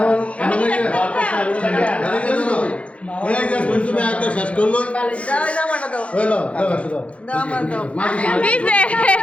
তুমি একটা শেষ করলো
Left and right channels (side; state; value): right; late; 0.062 ms